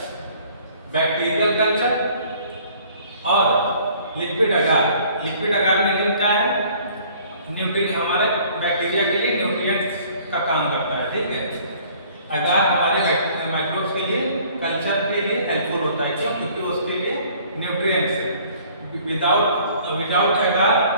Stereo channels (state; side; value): inverted; both; correlation -0.55